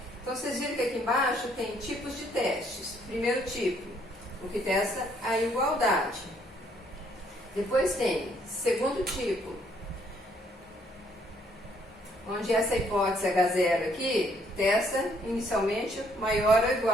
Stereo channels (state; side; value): normal; both; correlation 0.67